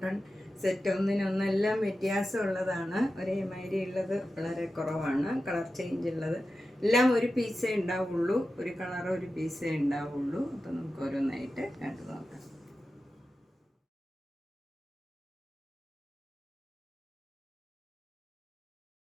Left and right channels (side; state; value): both; normal; correlation 0.93